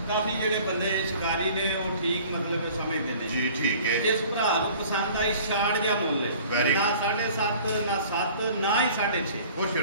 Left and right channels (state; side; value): inverted; both; correlation -0.49